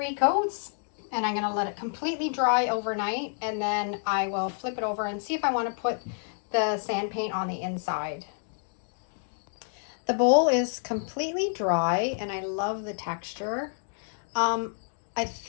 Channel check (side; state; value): right; silent; digital silence